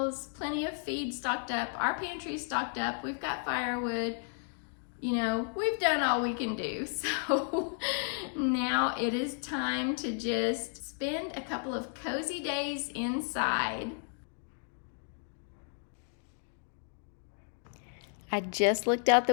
plenty of feed stocked up, our pantry stocked up, we've got firewood, you know, we've done all we can do. So now it is time to just spend a couple of cozy days inside. I just looked out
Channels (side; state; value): right; silent; 55 dB below the other